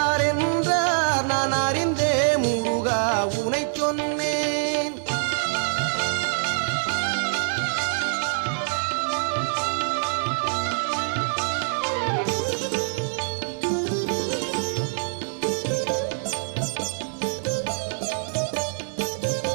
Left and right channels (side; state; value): left; silent; digital silence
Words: என்றார் நான் அறிந்தே முருகா உனை சொன்னேன்.